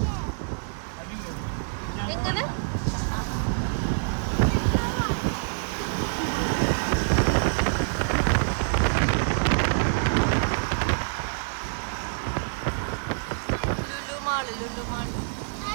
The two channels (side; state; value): left; silent; digital silence